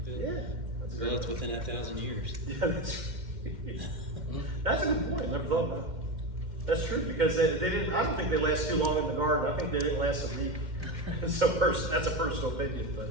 like that. yeah, Well, it's within that 1,000 years. yeah, that's right. That's a good point. I never thought about it. That's true because they didn't. I don't think they last too long in the garden. I think they didn't last a week. So that's a personal opinion, but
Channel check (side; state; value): left; late; 2.1 ms